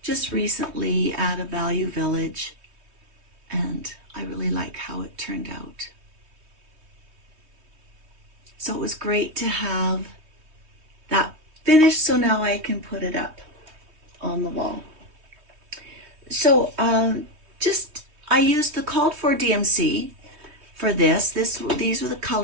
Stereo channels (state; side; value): late; left; 3.2 ms